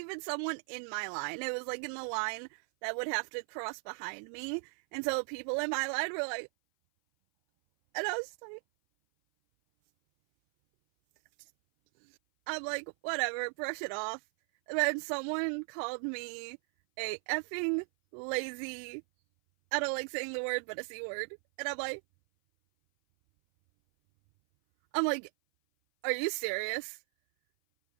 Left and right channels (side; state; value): left; silent; 53 dB below the other